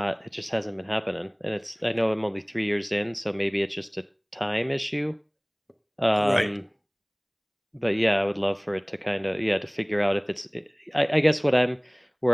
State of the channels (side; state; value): both; identical; correlation 1.00